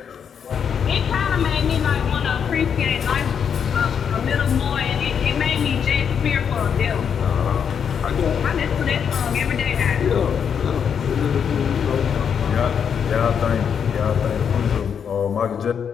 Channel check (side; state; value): right; quieter; 7.4 dB